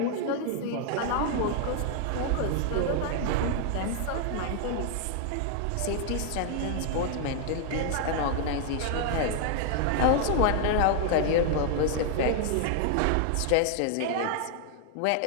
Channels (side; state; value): both; different; correlation 0.00